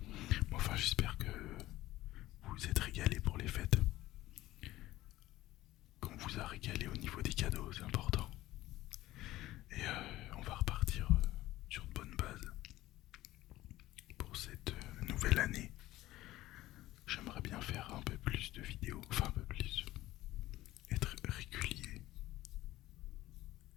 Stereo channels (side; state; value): right; quieter; 16.2 dB